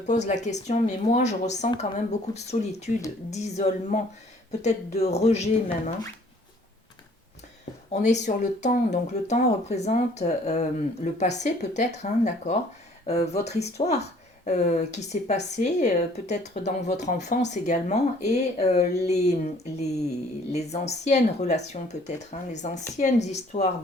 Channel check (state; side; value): normal; both; correlation 0.57